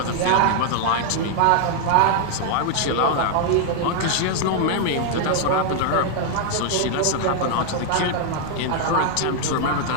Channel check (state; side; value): different; both; correlation 0.00